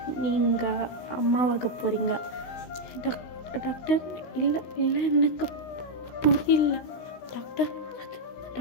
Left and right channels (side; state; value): right; late; 16 ms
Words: நீங்கள் அம்மாவாக போகிறீங்க. டாக்டர் இல்லை இல்லை எனக்கு புரியல டாக்டர்.